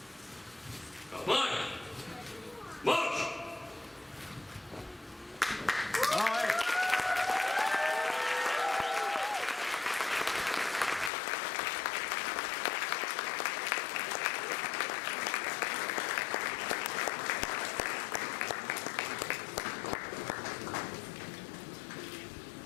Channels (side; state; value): right; drops out; at 11.1 s